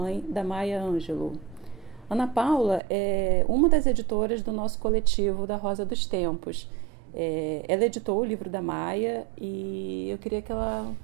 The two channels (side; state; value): left; drops out; at 2.8 s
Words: da Maya Angelou. Ana Paula é uma das editoras do nosso coletivo da Rosa dos Tempos. Ela editou o livro da Maya e eu queria que